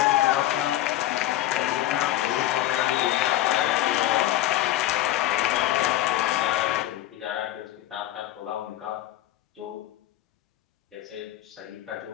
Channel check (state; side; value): quieter; right; 14.3 dB